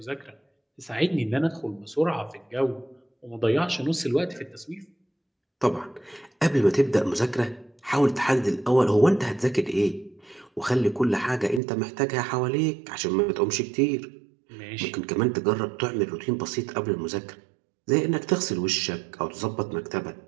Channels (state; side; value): drops out; left; at 11.6 s